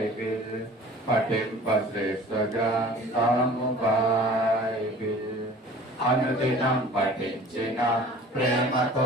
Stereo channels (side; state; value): both; normal; correlation 0.45